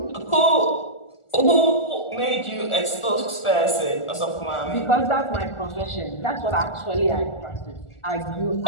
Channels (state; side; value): late; right; 1.4 ms